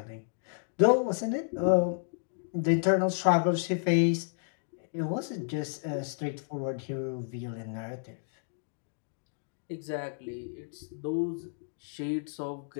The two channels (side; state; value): right; silent; digital silence